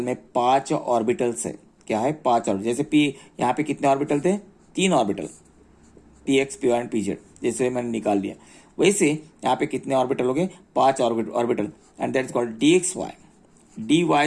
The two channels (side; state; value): both; identical; correlation 1.00